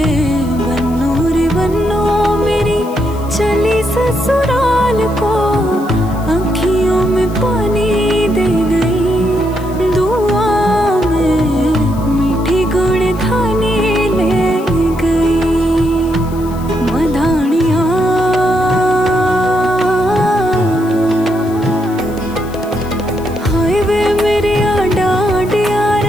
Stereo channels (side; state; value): left; noise; hiss, 22 dB below the sound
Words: बन्नो रे बन्नो मेरी चली ससुराल को, अखियों में पानी दे गई, दुआ में मीठी गुड़धानी ले गई, मधानिया हाय वे मेरे डांडिया